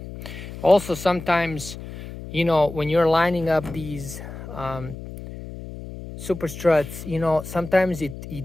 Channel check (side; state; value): left; noise; hum, 12 dB below the sound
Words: Also, sometimes, when you're lining up these Superstruts, sometimes it